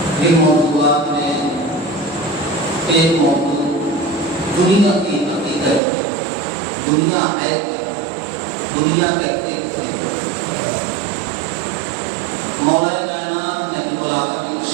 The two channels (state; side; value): drops out; left; at 5.8 s